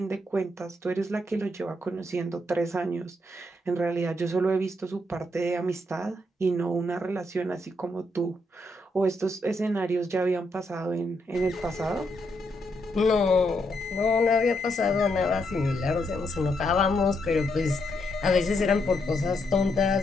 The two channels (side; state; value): both; normal; correlation 0.78